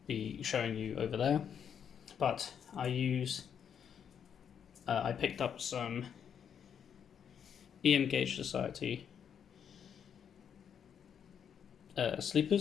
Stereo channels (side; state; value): right; quieter; 8.0 dB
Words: be showing you over there. But I picked up some EM Gauge Society